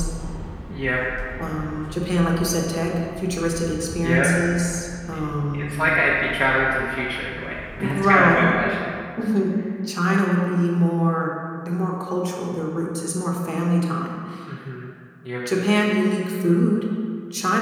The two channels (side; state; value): both; identical; correlation 1.00